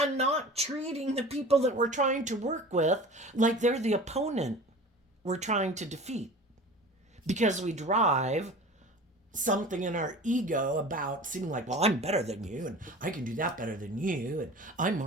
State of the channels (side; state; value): both; normal; correlation 0.38